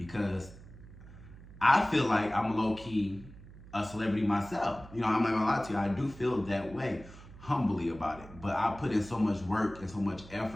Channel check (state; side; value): noise; right; hum, 18 dB below the sound